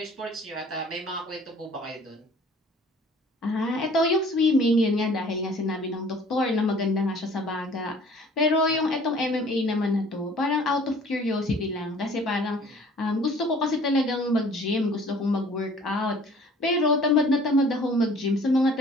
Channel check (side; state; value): both; normal; correlation 0.52